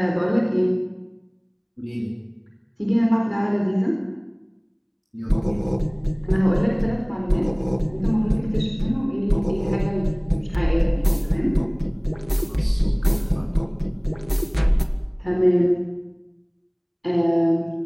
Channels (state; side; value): identical; both; correlation 1.00